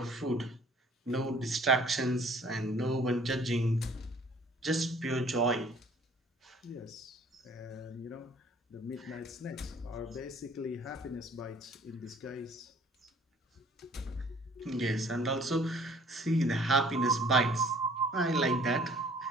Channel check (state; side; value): normal; both; correlation 0.55